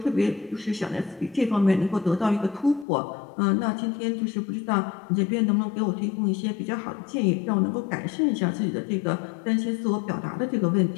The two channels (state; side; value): drops out; right; at 2.9 s